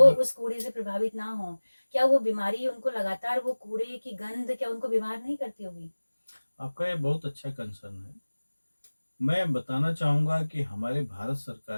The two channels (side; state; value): both; inverted; correlation -1.00